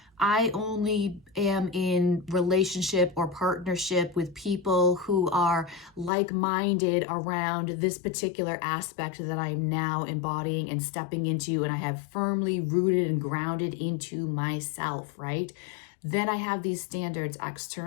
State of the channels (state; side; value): drops out; right; at 6.1 s